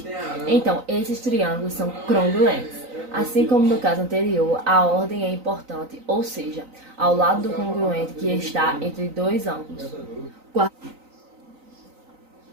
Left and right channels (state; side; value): late; left; 3.9 ms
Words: então esses triângulos são congruentes. Assim como no caso anterior, a ordem é importante, ou seja, ao lado do congruente que está entre dois ângulos.